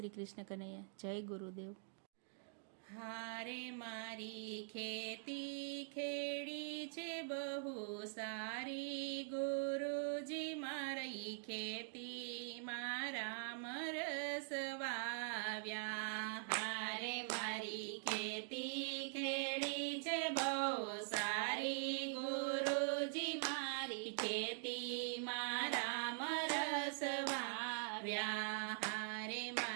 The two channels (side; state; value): left; silent; digital silence